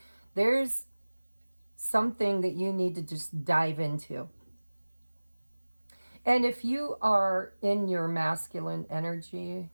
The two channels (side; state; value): both; inverted; correlation -1.00